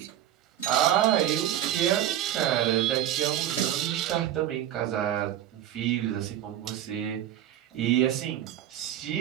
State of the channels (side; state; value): left; quieter; 11.7 dB